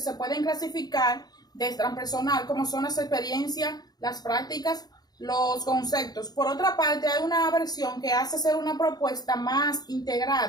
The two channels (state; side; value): late; right; 0.19 ms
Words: pueden clasificar de transpersonal, como son las experiencias, las prácticas, los conceptos. Por otra parte, hay una versión que hace ser una propuesta más